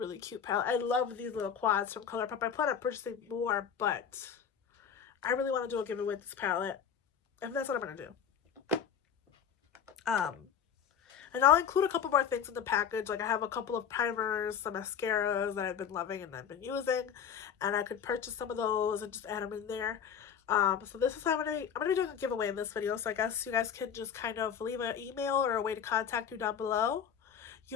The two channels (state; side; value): quieter; right; 8.0 dB